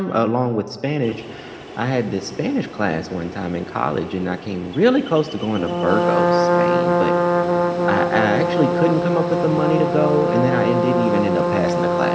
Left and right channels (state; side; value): identical; both; correlation 1.00